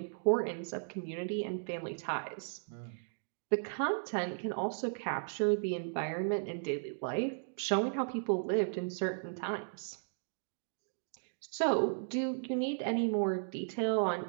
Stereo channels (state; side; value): silent; left; digital silence